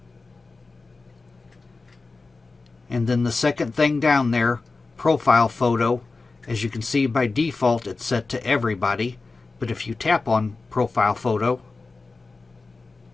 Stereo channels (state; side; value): quieter; right; 3.9 dB